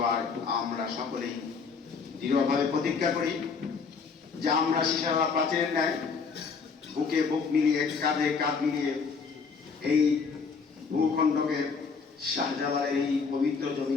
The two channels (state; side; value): quieter; right; 5.2 dB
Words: আমরা সকলেই দৃঢ়ভাবে প্রতিজ্ঞা করি যে আমরা শিশারালা প্রাচীরের ন্যায় বুকে বুক মিলিয়ে, কাঁধে কাঁধ মিলিয়ে এই ভূখণ্ডকে, শাহজালালের এই পবিত্র